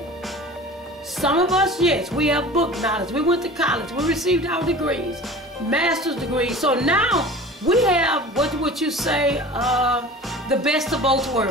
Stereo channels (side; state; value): both; normal; correlation 0.39